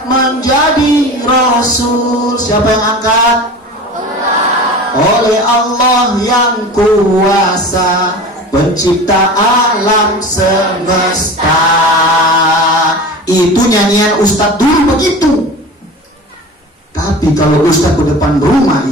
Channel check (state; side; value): normal; both; correlation 0.35